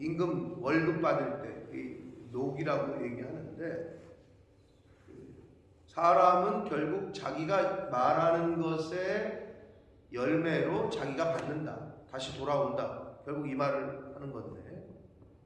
월급 받을 때 녹이라고 얘기하는데, 사람은 결국 자기가 말하는 것의 열매로 자기가 받는다. 다시 돌아온다. 결국 이 말을 하는 건데,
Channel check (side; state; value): both; identical; correlation 1.00